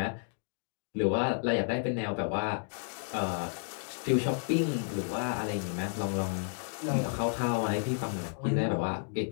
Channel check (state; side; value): silent; right; 57 dB below the other